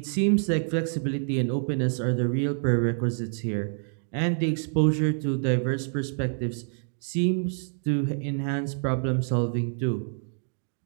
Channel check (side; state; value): left; silent; digital silence